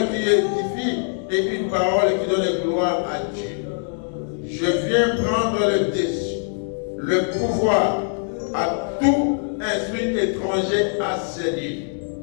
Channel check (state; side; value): silent; right; 64 dB below the other